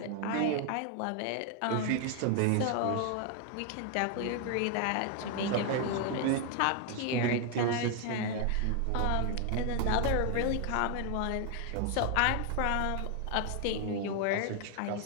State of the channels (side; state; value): both; different; correlation 0.00